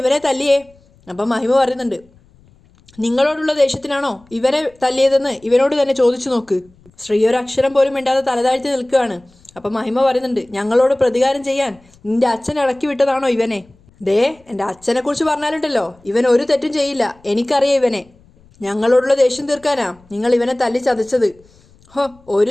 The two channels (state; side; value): noise; left; rumble, 30 dB below the sound